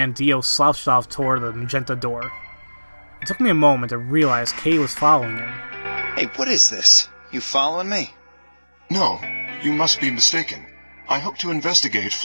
Dio slouched off toward the magenta door. It took me a moment to realize Kay was following him. Hey, what is this? You following me? No, you must be mistaken. I hope to investigate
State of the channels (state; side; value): inverted; both; correlation -1.00